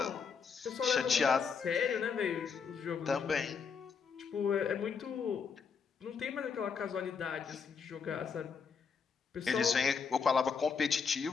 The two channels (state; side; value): quieter; right; 5.8 dB